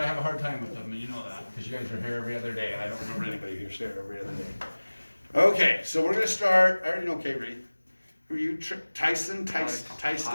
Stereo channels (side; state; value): both; inverted; correlation -1.00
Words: have a hard time with them, and you know that, because you guys are here every other day. I don't remember anybody who's here every other day. Okay, so we're going to start. I already know K-Reed. Who are you? Tyson?